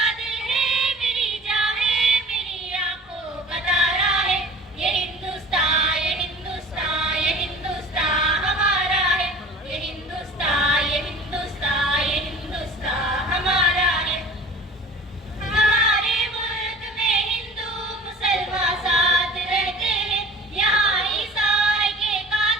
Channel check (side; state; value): both; normal; correlation 0.43